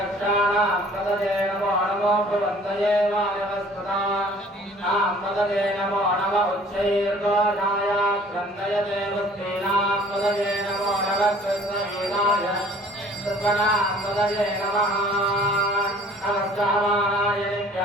पदये नमो नमो भवन्तये वायवस्पदानां पदये नमो नमः उच्चैर्घोषाय क्रन्दयते वस्तीनां पदये नमो नमः कृष्णवीराय सर्वनां पदये नमः नमस्काराय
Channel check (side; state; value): both; normal; correlation 0.52